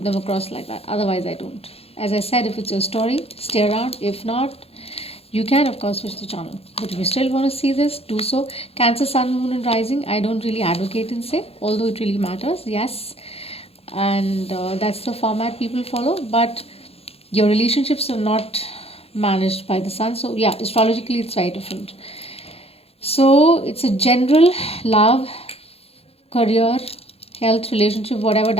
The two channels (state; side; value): late; right; 0.29 ms